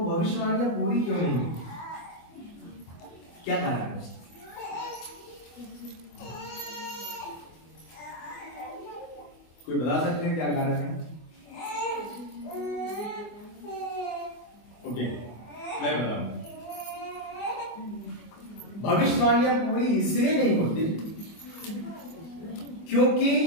भविष्यवाणियां पूरी क्यों नहीं हुई? क्या कारण है उसका? कोई बता सकते हैं क्या कारण है? ओके, मैं बताऊंगा। भविष्यवाणियां पूरी इसलिए नहीं होती क्योंकि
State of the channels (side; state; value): right; late; 24 ms